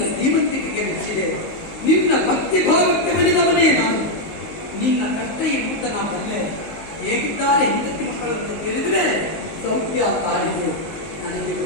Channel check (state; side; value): late; right; 19 ms